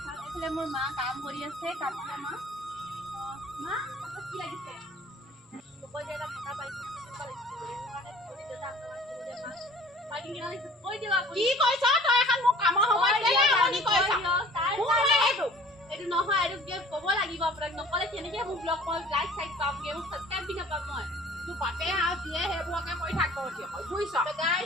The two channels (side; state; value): both; normal; correlation 0.49